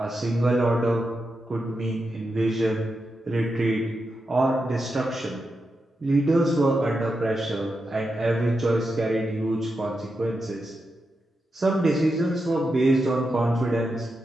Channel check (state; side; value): normal; both; correlation 0.87